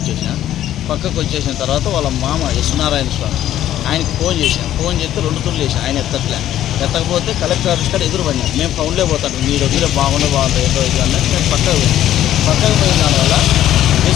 పక్కకు వచ్చేసిన తర్వాత వాళ్ళ మామ యశ్వనారాయణ స్వామి ఆయనకి ఫోన్ చేస్తే 2 తుళ్ళు వేసాను. ఆయన ఎత్తకపోతే కలెక్టర్ ఆఫీస్ కాడ ఎదురు పడినాను. మేము ఫౌండ్లే పోతాను, మీరు వదిలే బాగుండదు ఏదో ఇది అన్నట్టు నేను పక్కకు పోయిన దానివల్ల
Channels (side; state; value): right; quieter; 12.2 dB